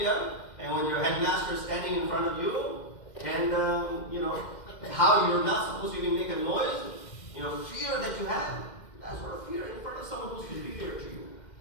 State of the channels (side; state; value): right; late; 2.1 ms